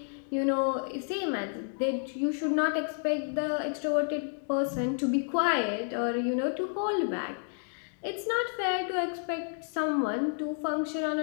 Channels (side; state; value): right; silent; digital silence